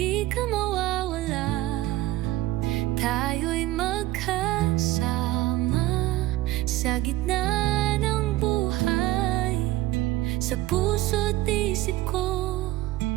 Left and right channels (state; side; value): quieter; left; 16.6 dB